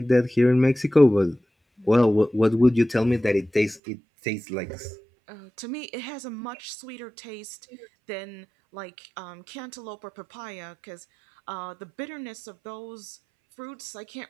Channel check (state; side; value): drops out; left; at 3.8 s